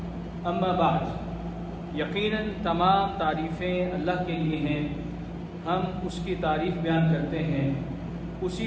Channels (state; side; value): identical; both; correlation 1.00